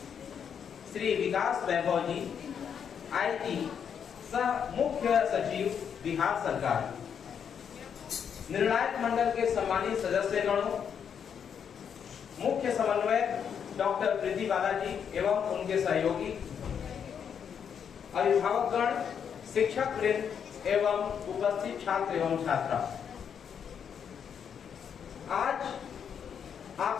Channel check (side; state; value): right; quieter; 7.7 dB